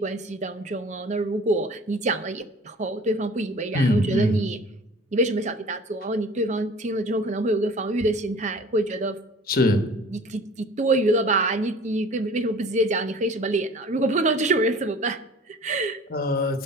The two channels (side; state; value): both; normal; correlation 0.45